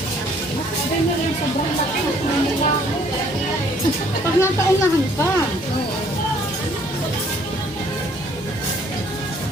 Pag nataunahan pa.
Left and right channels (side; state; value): both; normal; correlation 0.61